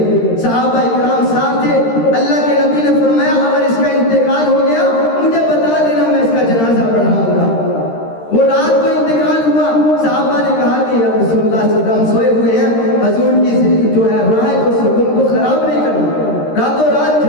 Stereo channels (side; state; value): right; late; 13 ms